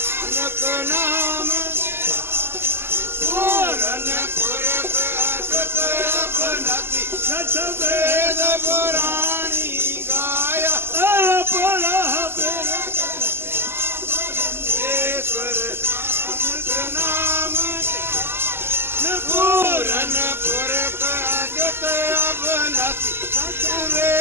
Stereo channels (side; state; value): left; late; 0.11 ms